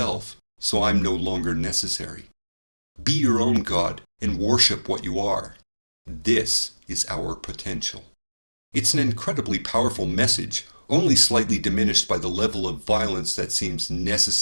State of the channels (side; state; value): both; inverted; correlation -1.00